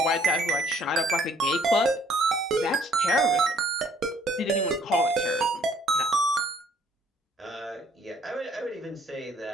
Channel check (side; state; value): both; normal; correlation 0.62